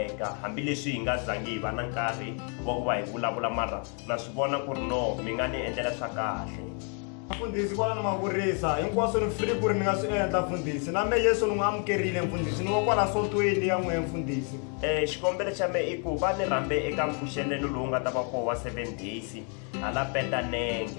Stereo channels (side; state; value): right; quieter; 39.9 dB